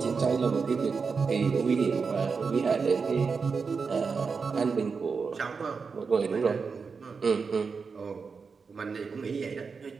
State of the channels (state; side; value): quieter; left; 5.2 dB